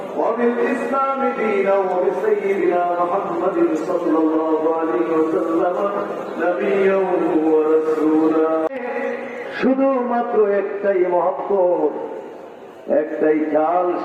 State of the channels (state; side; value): identical; both; correlation 1.00